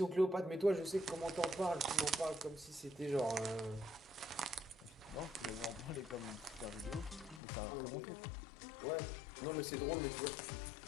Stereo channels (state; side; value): drops out; right; at 7.4 s